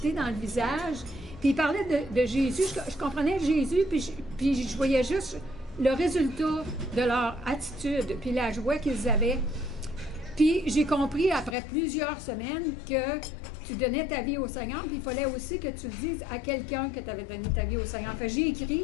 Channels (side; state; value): right; drops out; at 11.6 s